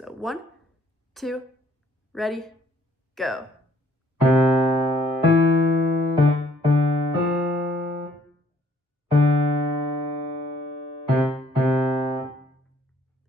1, 2, ready, go.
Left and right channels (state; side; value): normal; both; correlation 0.63